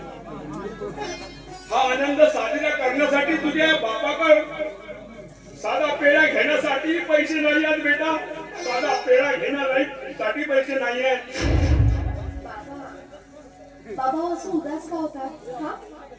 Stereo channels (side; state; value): both; identical; correlation 1.00